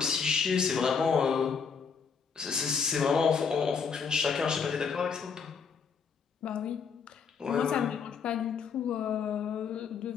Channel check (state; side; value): quieter; right; 6.1 dB